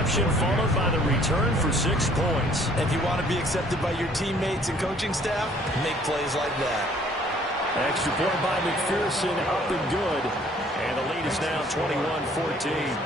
followed by the return for 6 points. If you want to be accepted by your teammates and coaching staff, make plays like that. Extra point by McPherson, up and good. And the lead is now 21-14.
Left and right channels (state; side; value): normal; both; correlation 0.59